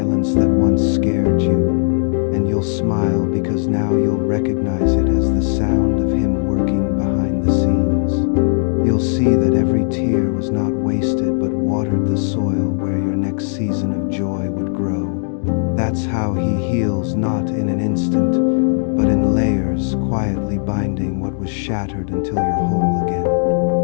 that once scared you, and you'll smile because now you'll recognize it as the sound of Him working behind the scenes. You'll see that every tear was not wasted but watered the soil where your next season of joy would grow. That's how He heals, not in an instant, but in layers, quietly binding what was shattered until you're whole again.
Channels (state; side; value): silent; right; digital silence